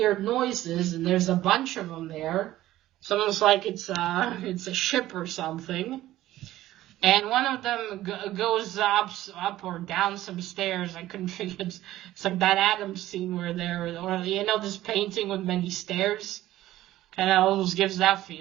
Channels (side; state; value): left; quieter; 14.9 dB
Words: noises, and there's a bunch of them there. It's almost like it's a ship or something. And one of them goes up or down some stairs. I couldn't figure it's like that Adams scene where or you know, this painting with many stairs. And it almost gives that